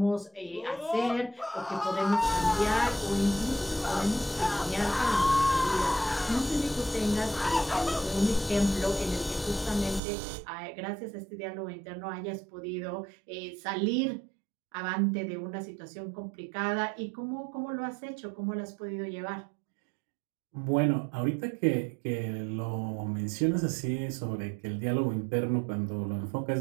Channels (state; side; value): drops out; left; at 10.0 s